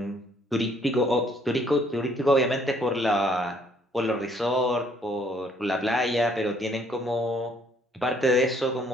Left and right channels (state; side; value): normal; both; correlation 0.64